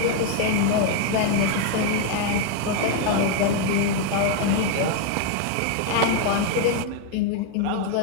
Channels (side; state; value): both; different; correlation 0.01